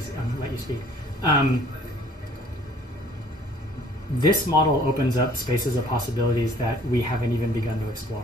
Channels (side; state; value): both; normal; correlation 0.56